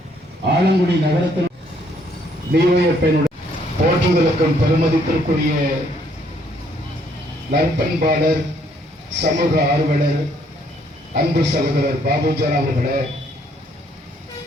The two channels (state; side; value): normal; both; correlation 0.67